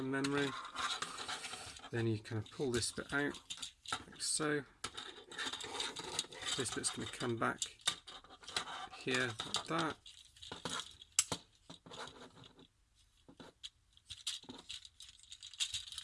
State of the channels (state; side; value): identical; both; correlation 1.00